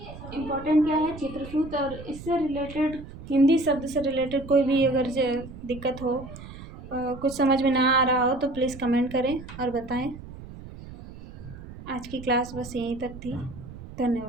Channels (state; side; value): noise; right; rumble, 14 dB below the sound